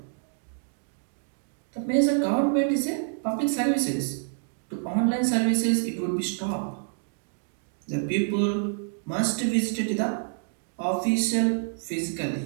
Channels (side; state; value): left; silent; digital silence